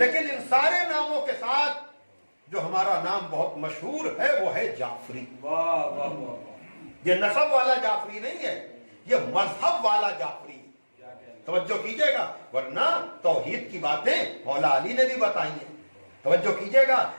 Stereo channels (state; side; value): inverted; both; correlation -1.00